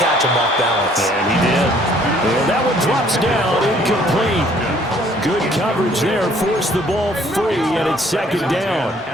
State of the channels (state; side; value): normal; both; correlation 0.60